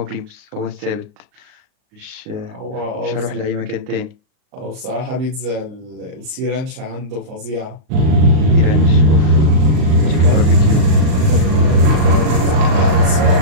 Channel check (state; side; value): late; left; 39 ms